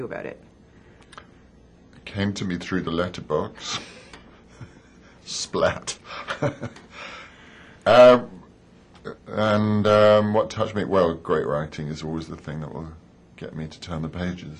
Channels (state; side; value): identical; both; correlation 1.00